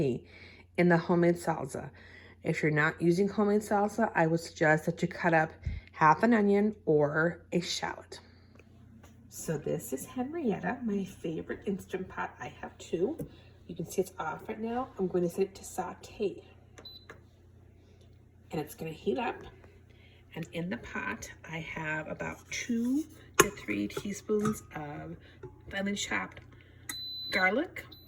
in the homemade salsa. If you're not using homemade salsa, I would suggest that you cut up half an onion or a shallot. So this is Henrietta, my favorite Instant Pot. I have 2. You can see it's off right now. I'm going to set it to saute. And it's going to heat up. And in the pot, I have about 2 to 3 teaspoons of finely chopped garlic.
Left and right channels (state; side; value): identical; both; correlation 1.00